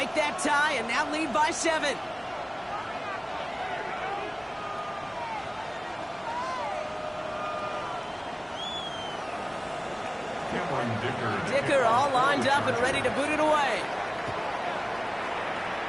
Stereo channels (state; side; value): identical; both; correlation 1.00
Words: that tie and now lead by 7. Dicker all lined up and ready to boot it away.